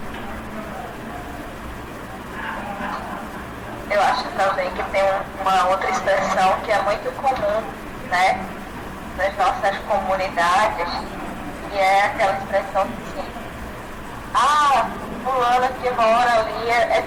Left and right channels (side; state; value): both; identical; correlation 1.00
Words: Eu acho também que tem uma outra expressão que é muito comum, né, nas nossas comunidades, que é aquela expressão assim: ah, fulana que mora ali é